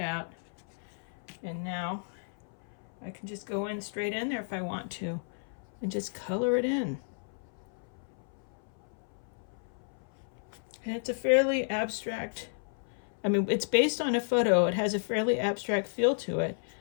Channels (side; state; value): right; silent; 56 dB below the other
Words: And now I can just go in straight in there if I want to and just color it in. And it's a fairly abstract, I mean, it's based on a photo. It has a fairly abstract feel to it,